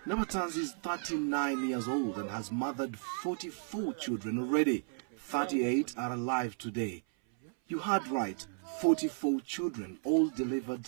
Nabatanzi is 39 years old and has mothered 44 children already. 38 are alive today. You heard right, 44 children, all delivered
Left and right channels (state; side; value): silent; left; 55 dB below the other